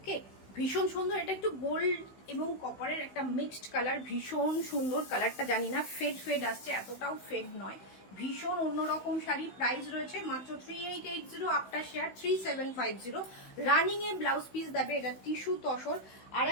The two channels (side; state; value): right; late; 16 ms